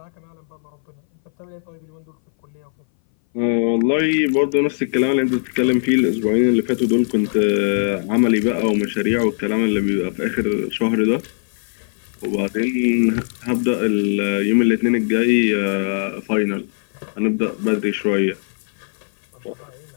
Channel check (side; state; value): right; silent; 60 dB below the other